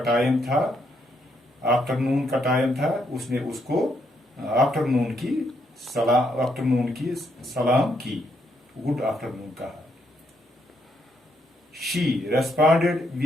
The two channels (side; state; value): both; normal; correlation 0.76